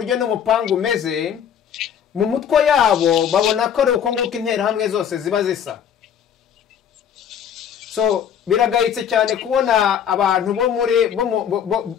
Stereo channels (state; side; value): quieter; right; 8.6 dB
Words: n'umupangu umeze mu mutwe yabo babona ko ari uko nguko interahamwe zose ziba zisa. Biragayitse cyane kubona abantu bo muri